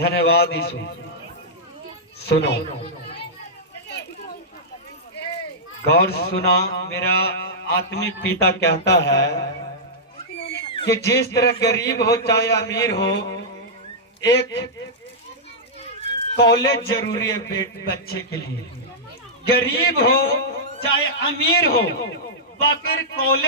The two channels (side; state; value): both; normal; correlation -0.11